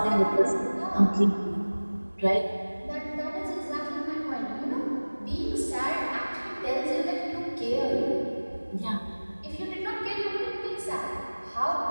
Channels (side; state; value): both; inverted; correlation -1.00